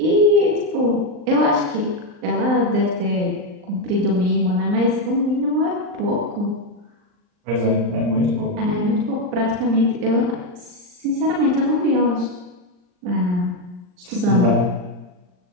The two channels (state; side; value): late; left; 39 ms